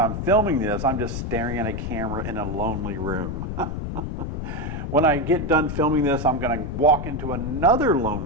filming this, I'm just staring at a camera in a lonely room. When I get done filming this, I'm going to walk into another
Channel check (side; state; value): left; noise; rumble, 4 dB below the sound